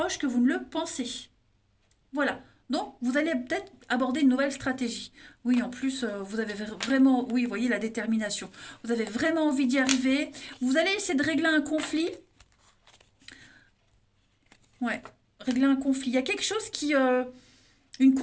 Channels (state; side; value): identical; both; correlation 1.00